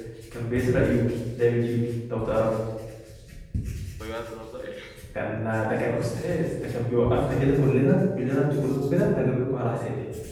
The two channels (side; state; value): both; identical; correlation 1.00